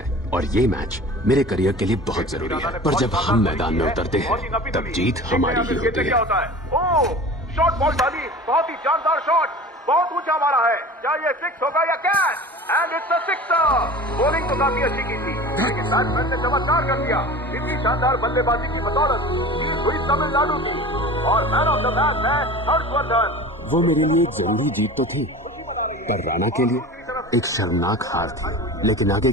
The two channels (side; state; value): both; normal; correlation 0.37